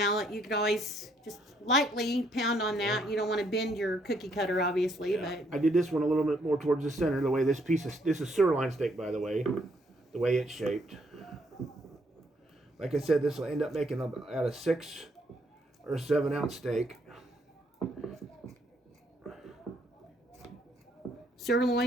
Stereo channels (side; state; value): both; normal; correlation 0.70